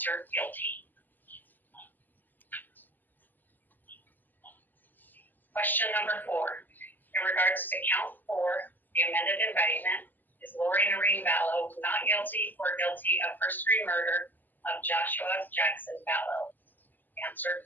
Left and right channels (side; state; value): right; late; 0.088 ms